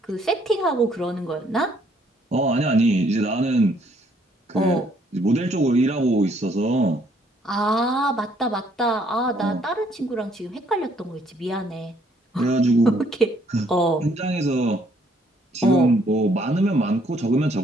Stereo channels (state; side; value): normal; both; correlation 0.66